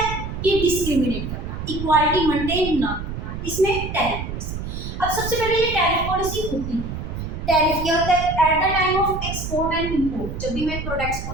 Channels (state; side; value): noise; right; rumble, 6 dB below the sound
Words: कि डिस्क्रिमिनेट करना, इक्वालिटी मेंटेन ना करना, इसमें टैरिफ पॉलिसी। अब सबसे पहले ये टैरिफ पॉलिसी होती है, टैरिफ क्या होता है, at the time of export and import, जब भी मैं प्रोडक्ट्स को